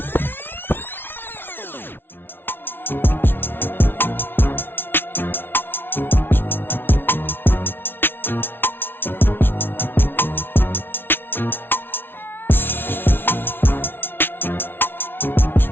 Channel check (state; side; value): late; right; 0.10 ms